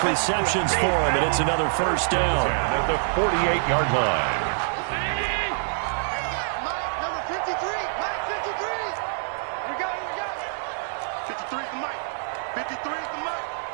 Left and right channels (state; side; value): silent; left; 61 dB below the other